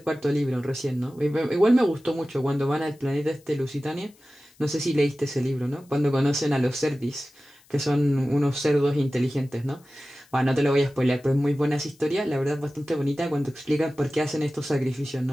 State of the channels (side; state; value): left; noise; hiss, 30 dB below the sound